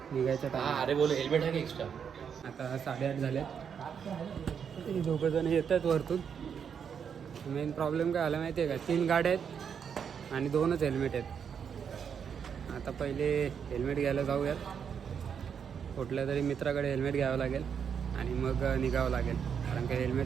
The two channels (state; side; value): quieter; left; 7.3 dB